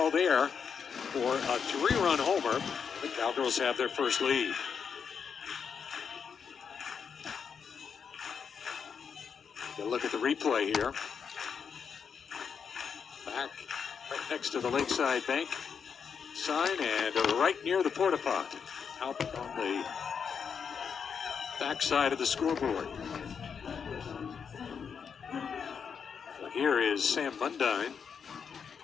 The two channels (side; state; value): right; quieter; 6.6 dB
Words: there for a 3-run homer. The Cowgirls have their first lead. Get a look at the replay here. Back right next to the Lakeside Bank sign and right near the porta pot, out on the back side of the scoreboard. So here is Sam Mundine.